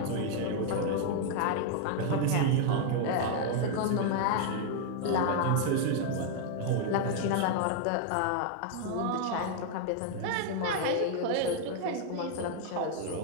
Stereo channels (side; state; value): both; different; correlation 0.00